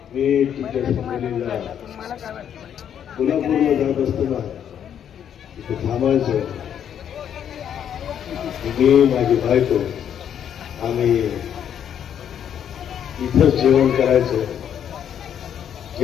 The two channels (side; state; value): right; quieter; 9.1 dB